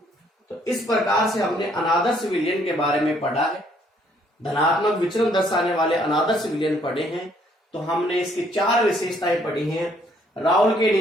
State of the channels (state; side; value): normal; both; correlation 0.66